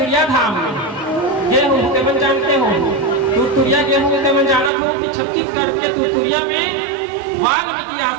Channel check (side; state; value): left; drops out; at 4.7 s